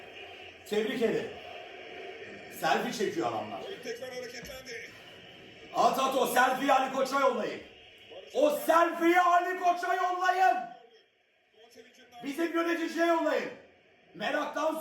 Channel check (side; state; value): both; identical; correlation 1.00